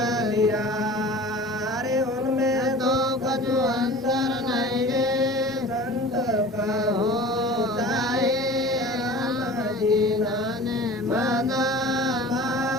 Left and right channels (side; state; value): both; normal; correlation 0.40